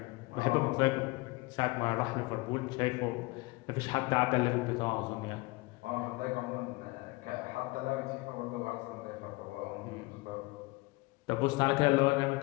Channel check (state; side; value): quieter; right; 23.7 dB